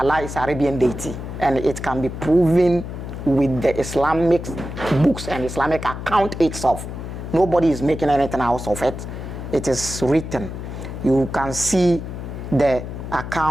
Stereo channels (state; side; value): noise; left; hum, 8 dB below the sound